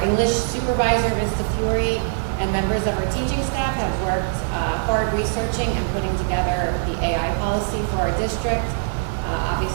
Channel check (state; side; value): silent; left; 64 dB below the other